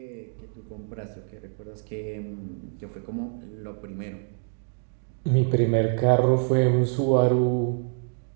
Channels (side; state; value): left; silent; digital silence